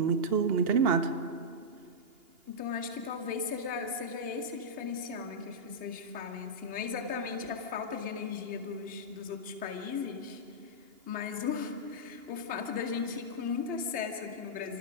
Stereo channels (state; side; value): late; left; 2.8 ms